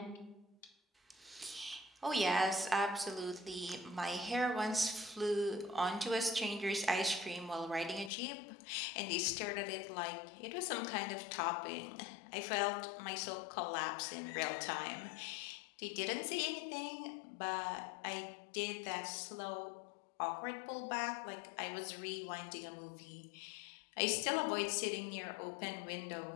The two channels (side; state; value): right; drops out; at 8.1 s